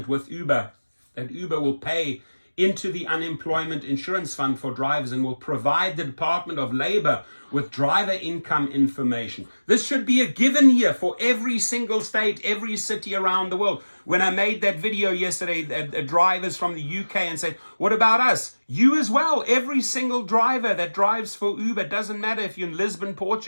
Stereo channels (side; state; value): both; inverted; correlation -1.00